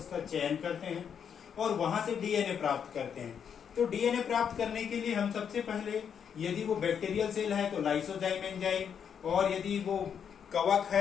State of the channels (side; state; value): right; quieter; 7.7 dB